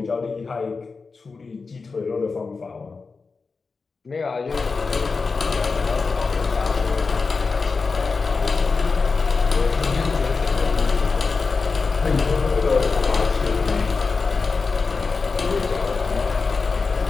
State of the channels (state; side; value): quieter; right; 4.5 dB